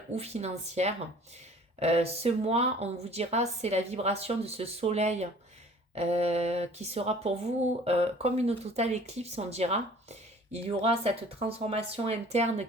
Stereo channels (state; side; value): normal; both; correlation 0.50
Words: ou financière. Ce mois, on vous dira, c'est la vibration de ce soleil qui sera pour vous comme une totale éclipse, on dira. Il y aura cette transformation interne